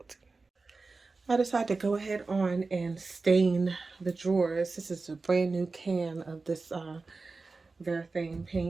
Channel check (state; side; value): quieter; left; 3.9 dB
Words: I decided to go ahead on and stain the drawers. This is a brand new can of this Refinishing